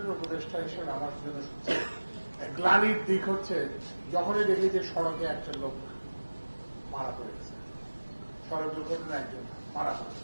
উপদেষ্টা হিসেবে আমার জন্য গ্লানির দিক হচ্ছে যখনই দেখি যে সড়কে একটা লোক মারা পড়েছে, সড়ক দুর্ঘটনা একজন মারা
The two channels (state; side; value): inverted; both; correlation -1.00